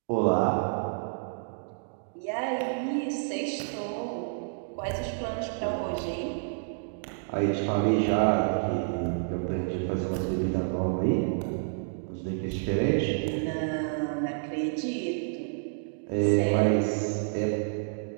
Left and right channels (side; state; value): left; silent; digital silence